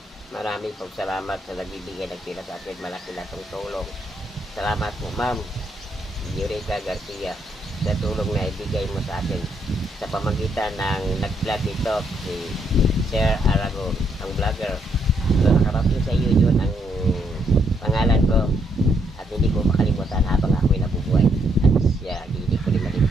Maraming pong salamat sa nagbibigay ng pera sa akin. Malaki na itong tulong. Salamat po, Ma'am Eureka Garcia, sa tulong na ibigay mo sa akin sa pamagitan ng nag-vlog ito, si Sir Aragon, ang vlogger. So, nakarating sa iyo yun ang pangalan ko at hindi ko makalimutan habang ako'y nabubuhay. At siya, hindi ko rin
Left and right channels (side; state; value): both; normal; correlation 0.74